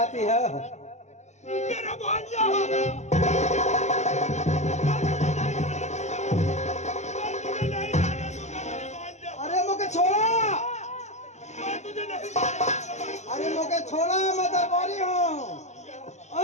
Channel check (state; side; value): late; right; 0.33 ms